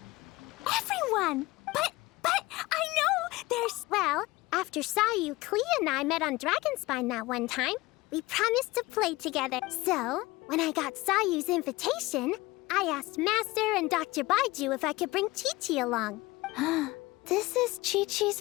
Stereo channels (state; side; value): quieter; right; 20.6 dB